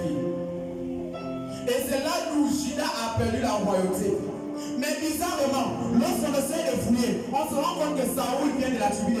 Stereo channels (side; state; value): both; identical; correlation 1.00